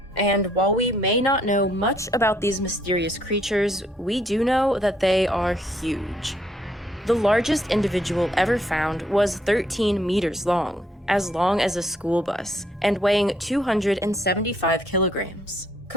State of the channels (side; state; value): both; normal; correlation 0.68